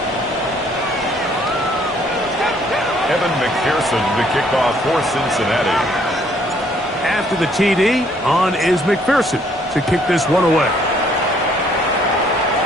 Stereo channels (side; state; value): both; normal; correlation 0.64